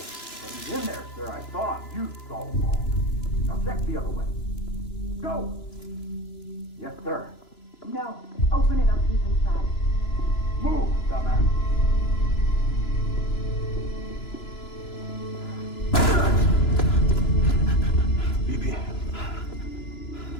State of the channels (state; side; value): late; right; 3.0 ms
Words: But he's in there, sir. I saw him. You saw him all. Now check the other way. Go! Yes, sir. No. Open it up. He's inside. Move, dumbass. BB.